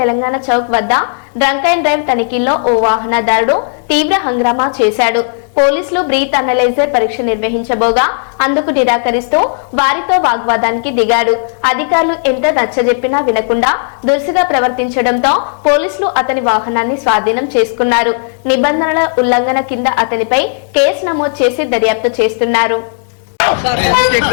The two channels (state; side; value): silent; right; 64 dB below the other